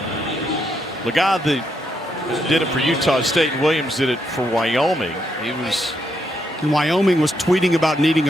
Lega did it for Utah State, and Williams did it for Wyoming. And Wyoming was tweeting about needing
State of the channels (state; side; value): normal; both; correlation 0.78